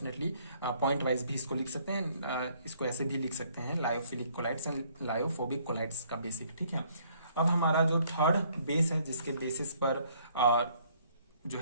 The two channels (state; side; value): inverted; both; correlation -0.64